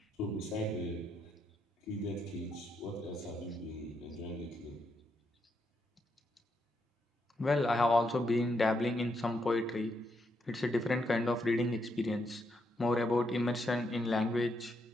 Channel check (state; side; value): normal; both; correlation 0.79